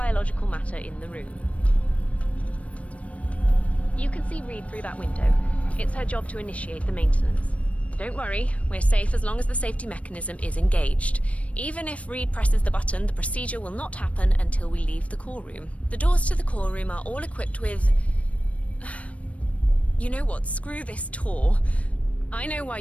matter in the room. You can see Reed through that window. It's her job to initiate the maintenance. Don't worry, we're safe as long as the safety mechanism is engaged. Even if Reed presses the button, the procedure will not happen until we leave the core room. The doors to the core room are all equipped with... You know what? Screw this tour. I know why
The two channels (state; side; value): late; right; 0.065 ms